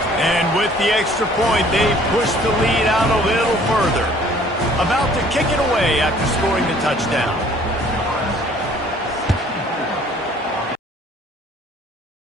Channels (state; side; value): normal; both; correlation 0.55